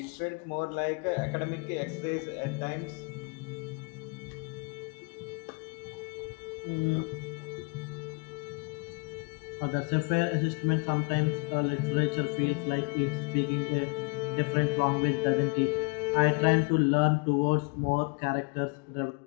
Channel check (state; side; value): quieter; right; 33.2 dB